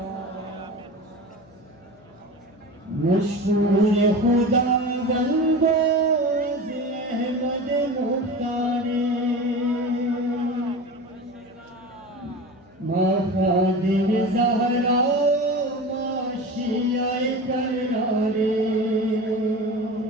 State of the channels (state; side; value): noise; left; hum, 28 dB below the sound